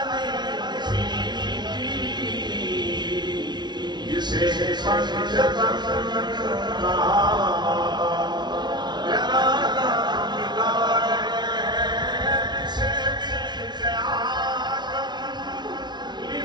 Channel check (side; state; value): left; late; 0.20 ms